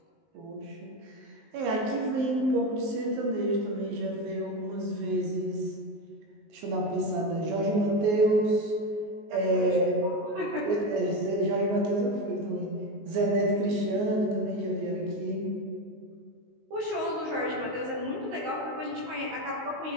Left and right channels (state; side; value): late; left; 19 ms